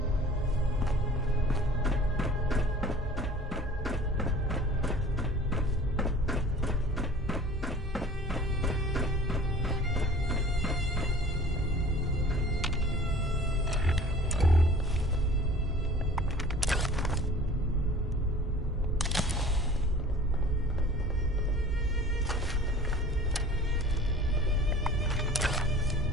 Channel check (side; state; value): both; normal; correlation 0.45